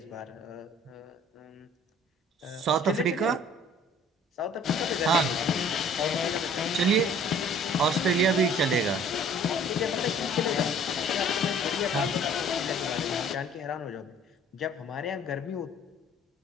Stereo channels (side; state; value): both; normal; correlation 0.53